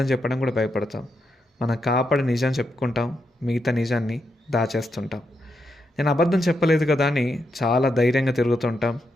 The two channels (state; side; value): normal; both; correlation 0.83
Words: చెప్పడం కూడా భయపడతాం. మనం కాపాడి నిజం చెప్పుకుంటాం, మిగతా నిజాన్ని దాచేస్తుంటాం. నేను అబద్ధం చెప్పలేదు కదా అని చాలా ధైర్యంగా తిరుగుతుంటాం,